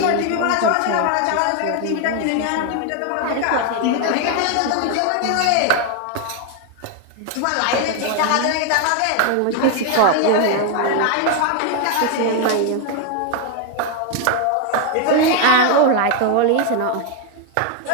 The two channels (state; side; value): different; both; correlation 0.01